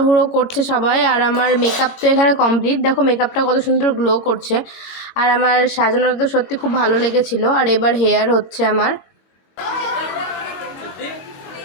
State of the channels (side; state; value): right; late; 22 ms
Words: করছে সবাই। আর আমার মেকআপ তো এখানে কমপ্লিট, দেখো মেকআপটা কত সুন্দর গ্লো করছে। আর আমার সাজানোটা তো সত্যি খুব ভালো লেগেছিল। আর এবার হেয়ার হচ্ছে আমার।